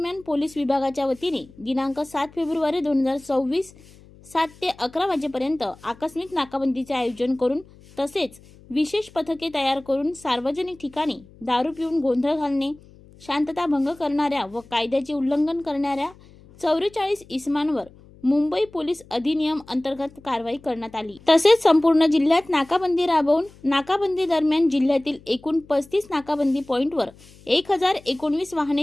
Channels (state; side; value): noise; left; hum, 24 dB below the sound